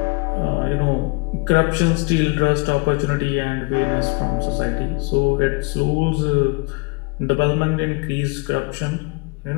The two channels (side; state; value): right; quieter; 28.2 dB